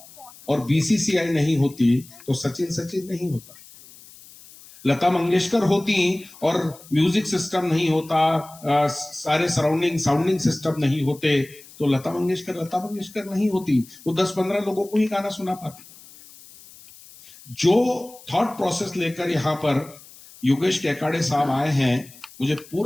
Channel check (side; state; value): left; noise; hiss, 21 dB below the sound